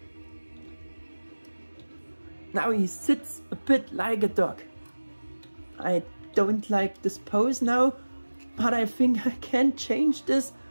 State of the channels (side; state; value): both; inverted; correlation -1.00